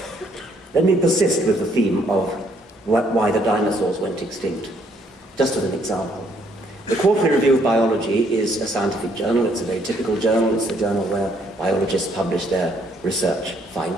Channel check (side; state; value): both; normal; correlation 0.68